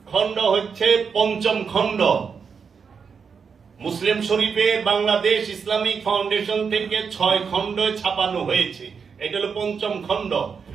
খণ্ড হচ্ছে পঞ্চম খণ্ড। মুসলিম শরীফে বাংলাদেশ ইসলামিক ফাউন্ডেশন থেকে 6 খণ্ড ছাপানো হয়েছে, এটা হলো পঞ্চম খণ্ড।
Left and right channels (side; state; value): left; quieter; 6.0 dB